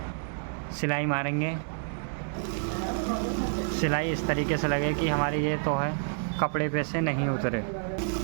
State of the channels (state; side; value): silent; left; digital silence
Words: सिलाई मारेंगे। सिलाई इस तरीके से लगे कि हमारी ये तो है कपड़े पे से नहीं उतरे,